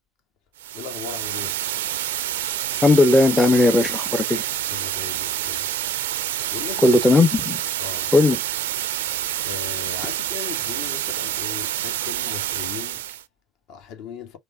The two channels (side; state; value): both; normal; correlation 0.53